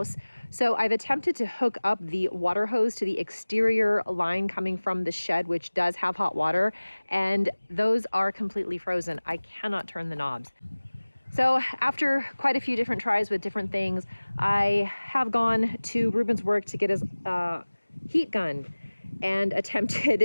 So I've attempted to hook up the water hose to the exterior line coming from the shed, which does have hot water, and those are completely frozen. I cannot turn the knobs. So after quite a few different tries with different things, I have gone to Ruben's work to get his heat gun and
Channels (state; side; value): inverted; both; correlation -1.00